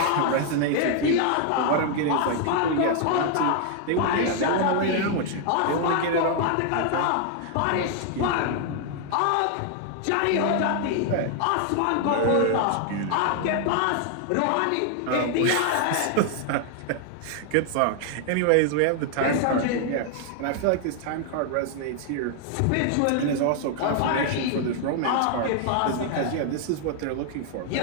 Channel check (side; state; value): both; different; correlation 0.00